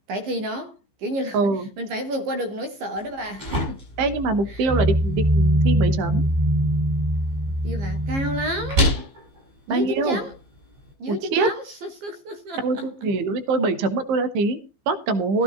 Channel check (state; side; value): late; left; 15 ms